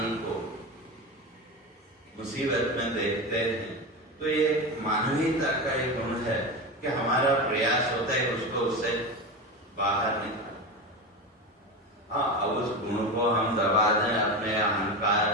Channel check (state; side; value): normal; both; correlation 0.21